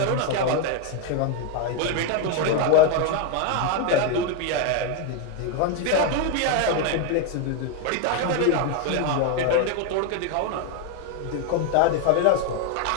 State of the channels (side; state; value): both; different; correlation 0.01